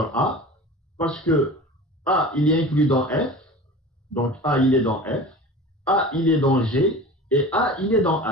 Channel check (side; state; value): both; normal; correlation 0.36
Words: A? Parce que A, il est inclus dans F, donc A, il est dans F, A, il est dans G, et A, il est dans